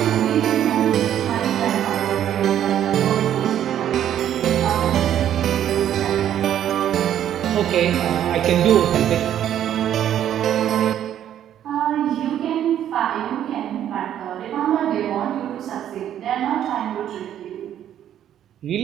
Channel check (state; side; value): quieter; left; 10.7 dB